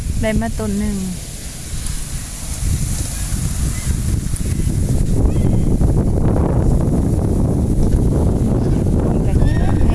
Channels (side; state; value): both; identical; correlation 1.00